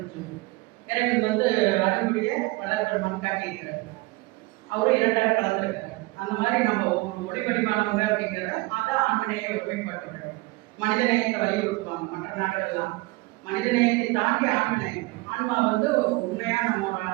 இறைவன் அடிமுடியை வளர் பெருமான் காட்டியிருக்கிறார். அவரும் இரண்டரை கலந்துருக்கிறார். அந்த மாதிரி நம்ம ஒரு ஒளி வடிவானவங்க அப்படிங்கிறத அதை ஆண்மனையை ஒருமைப்பாட்டுறாங்க. மனிதநேயத்தை வலியுறுத்துவாங்க மற்ற நாடுகள்லாம். மனிதநேயத்தை தாண்டி ஆண்மநேயம். ஆன்மா உண்மையா நம்மளோட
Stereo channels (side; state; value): left; quieter; 22.8 dB